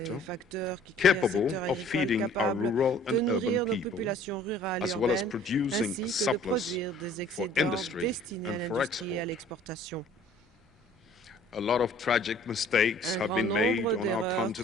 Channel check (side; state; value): both; normal; correlation 0.53